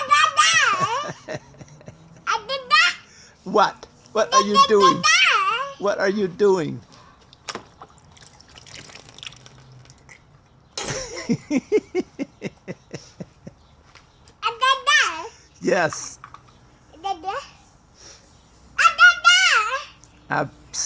What? What are you doing? What are you doing? Yes. A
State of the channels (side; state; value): both; identical; correlation 1.00